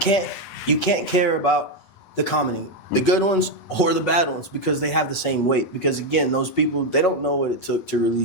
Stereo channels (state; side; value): late; right; 8.2 ms